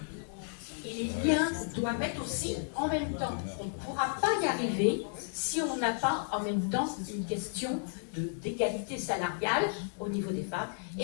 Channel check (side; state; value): right; silent; digital silence